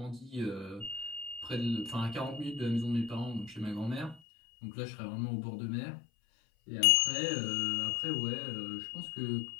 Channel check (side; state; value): right; drops out; at 4.2 s